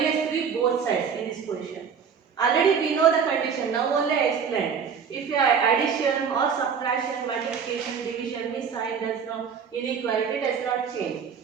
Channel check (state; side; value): quieter; left; 6.7 dB